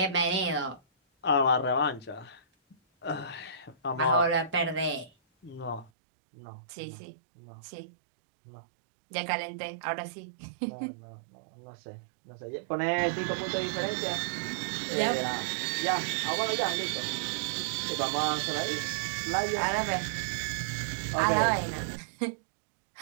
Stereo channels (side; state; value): left; drops out; at 5.9 s